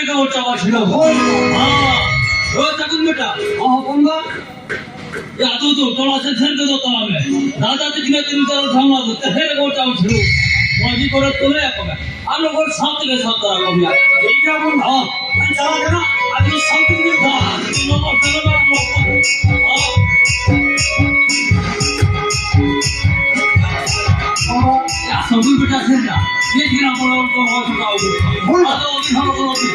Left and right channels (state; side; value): identical; both; correlation 1.00